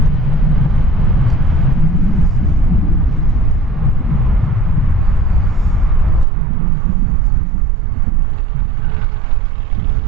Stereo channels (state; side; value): drops out; left; at 6.2 s